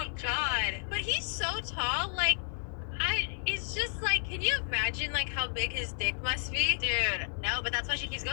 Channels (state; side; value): silent; right; 57 dB below the other